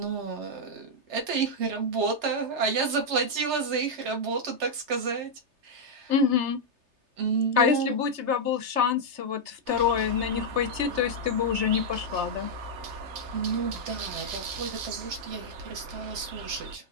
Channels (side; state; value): left; late; 3.3 ms